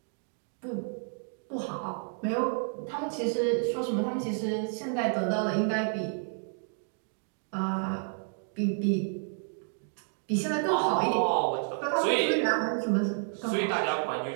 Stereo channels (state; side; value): silent; left; 57 dB below the other